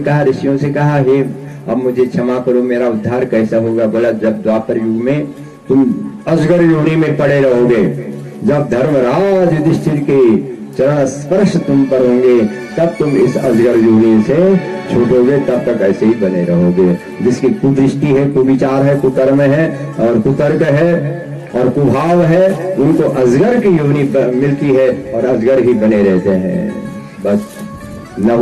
ऋषियों से कहा, हे अब मुझे क्षमा करो, मेरा उद्धार कैसा होगा? बोला जब द्वापर युग में तुम अजगर योनि में पड़े रहोगे, जब धर्मराज युधिष्ठिर के चरण स्पर्श तुम पर होंगे, तब तुम इस अजगर योनि से छूटोगे, तब तक ऐसे ही बने रहोगे। जिसकी कुदृष्टि है, कुविचार है, कुकर्म है और कुतर्क है और कुभाव है, उनको अजगर की योनि मिलती है और अजगर ही बने रहते हैं। बस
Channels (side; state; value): both; identical; correlation 1.00